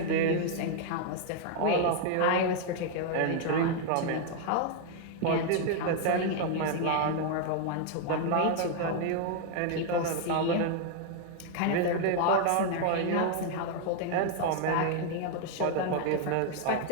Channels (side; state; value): both; different; correlation 0.00